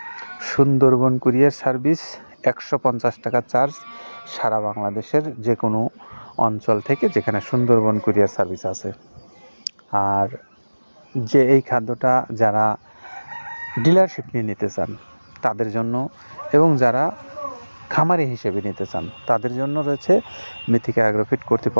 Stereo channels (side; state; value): both; inverted; correlation -1.00